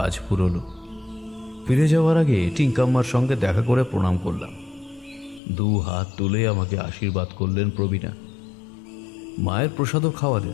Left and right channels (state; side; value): drops out; right; at 5.4 s